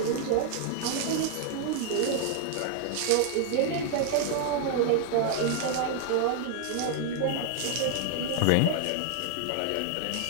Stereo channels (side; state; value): both; different; correlation 0.00